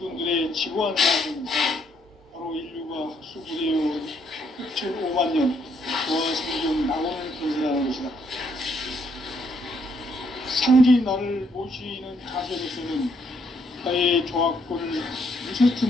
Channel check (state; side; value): normal; both; correlation 0.72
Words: 지구한 사람은 바로 인류가 학수부대요 6,5만 년 조화 성경 낙원을 건설하는 것이다. 상제인 나를 모시는 자세로서는 나의 조화권을